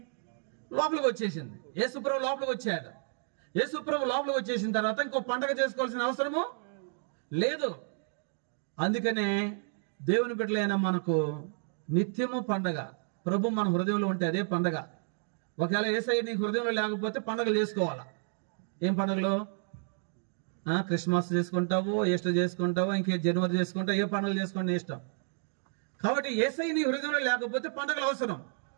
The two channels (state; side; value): silent; left; digital silence